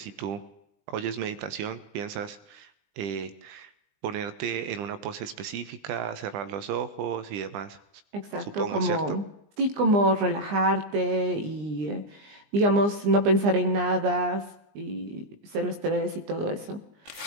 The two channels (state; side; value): late; left; 20 ms